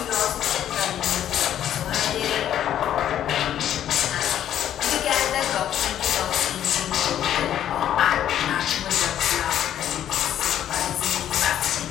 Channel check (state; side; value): quieter; right; 10.8 dB